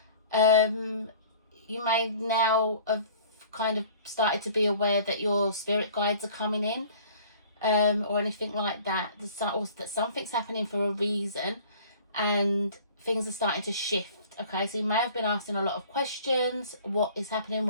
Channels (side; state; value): both; inverted; correlation -0.49